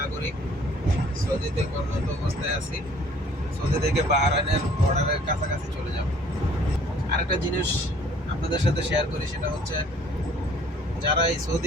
নাগরিক, সৌদিতে কর্মরত অবস্থায় আছি। সৌদি থেকে বাহরাইনের বর্ডারের কাছাকাছি চলে যাব। আরেকটা জিনিস আপনাদের সাথে শেয়ার করি, সেটা হচ্ছে যারা এই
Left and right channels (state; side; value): normal; both; correlation 0.56